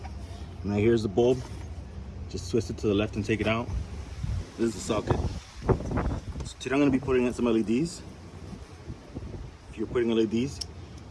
Now here's the bulb. Just twist it to the left and take it out. This is the socket. So today I'm going to be putting in some LEDs. If you're putting LEDs,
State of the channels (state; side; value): identical; both; correlation 1.00